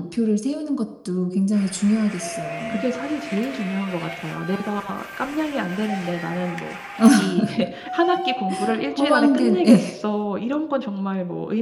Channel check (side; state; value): both; identical; correlation 1.00